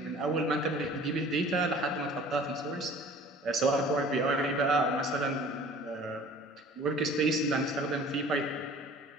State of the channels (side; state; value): both; normal; correlation 0.47